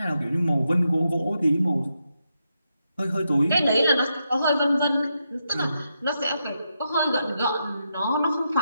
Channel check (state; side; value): inverted; both; correlation -0.84